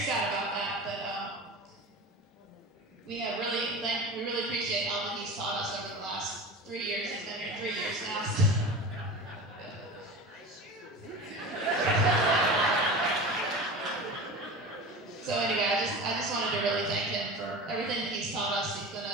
about that, but we really appreciate all that he's taught us over the last 3 years. He's been here 3 years now. So anyway, I just wanted to really thank him for everything that he's taught us. He's been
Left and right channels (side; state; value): both; normal; correlation 0.31